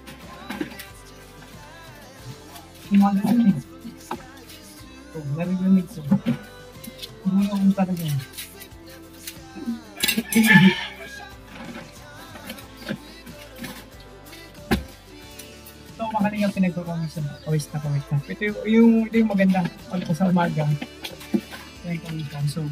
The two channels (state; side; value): identical; both; correlation 1.00